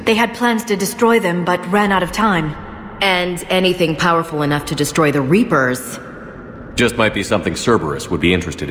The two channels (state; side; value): identical; both; correlation 1.00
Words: They had plans to destroy them, but ran out of time. And anything powerful enough to destroy the Reapers. Just might be something Cerberus would be interested